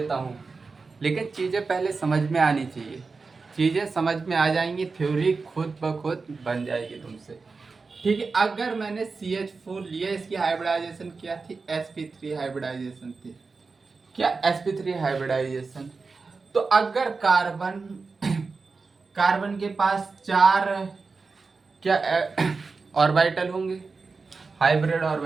हूँ, लेकिन चीजें पहले समझ में आनी चाहिए। चीजें समझ में आ जाएंगी, थ्योरी खुद ब खुद बन जाएगी तुमसे। ठीक है। अगर मैंने CH4 लिया, इसकी हाइब्रिडाइजेशन क्या थी? sp3 हाइब्रिडाइजेशन थी। क्या? sp3 hybridisation. तो अगर कार्बन के पास 4 क्या ऑर्बिटल होंगे? Hybrid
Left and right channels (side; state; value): left; quieter; 4.4 dB